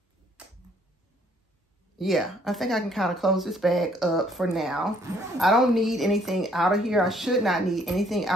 Yeah, I think I can kind of close this bag up for now. I don't need anything out of here. I should not need anything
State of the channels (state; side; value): normal; both; correlation 0.64